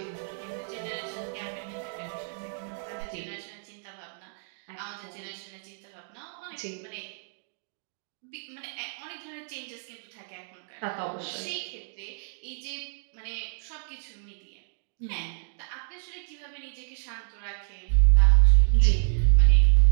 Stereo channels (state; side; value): silent; left; digital silence